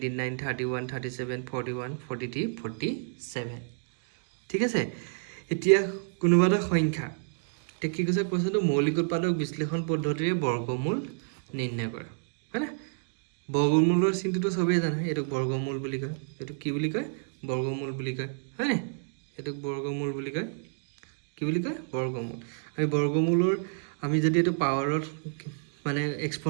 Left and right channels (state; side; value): silent; left; digital silence